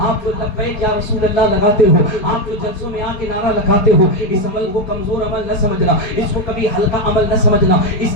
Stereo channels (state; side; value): late; right; 4.8 ms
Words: آپ جو لبیک یا رسول اللہ لگاتے ہو، آپ جو جلسوں میں آ کے نعرہ لگاتے ہو، اس عمل کو کمزور عمل نہ سمجھنا، اس کو کبھی ہلکا عمل نہ سمجھنا،